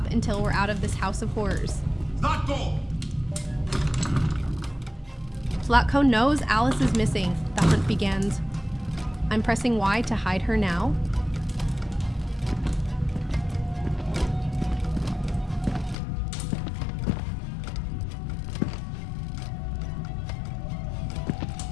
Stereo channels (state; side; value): drops out; right; at 16.0 s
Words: until we're out of this house of horrors. Zlatko! Zlatko knows Alice is missing. The hunt begins. I'm pressing Y to hide her now.